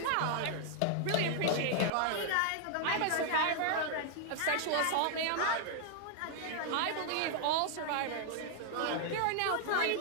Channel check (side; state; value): both; different; correlation 0.00